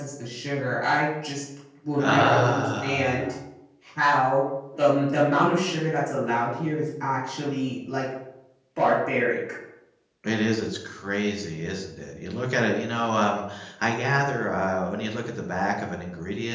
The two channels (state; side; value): identical; both; correlation 1.00